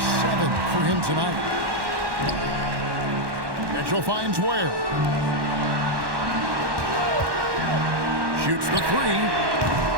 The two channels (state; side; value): late; left; 1.1 ms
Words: for him tonight. Mitchell finds Ware. Shoots the